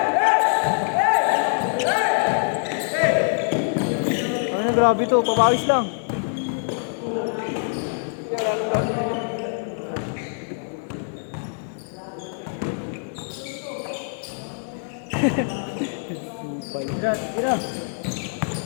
Ano na grabe to, papawis lang. Tira, tira.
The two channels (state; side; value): silent; right; 62 dB below the other